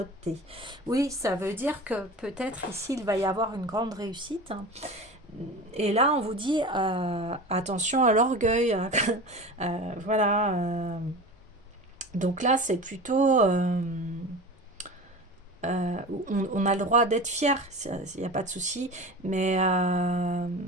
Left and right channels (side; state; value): both; normal; correlation 0.33